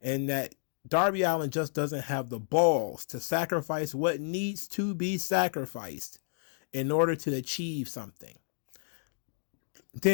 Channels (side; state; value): right; silent; digital silence